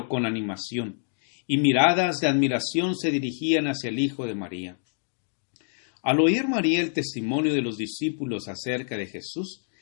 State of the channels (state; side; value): silent; right; digital silence